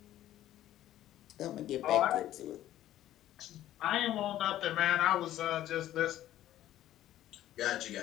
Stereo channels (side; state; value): right; quieter; 13.1 dB